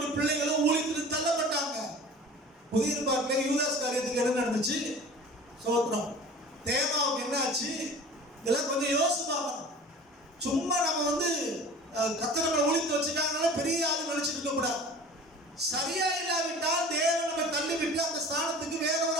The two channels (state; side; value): normal; both; correlation 0.41